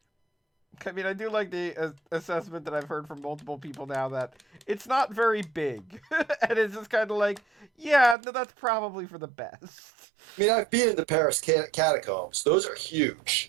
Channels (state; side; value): drops out; left; at 8.2 s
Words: I mean, I do like the assessment that I've heard from multiple people now that it's not very big. And it's just kind of like, yeah, no, that's probably for the best. I mean, I've been in the Paris catacombs. Those are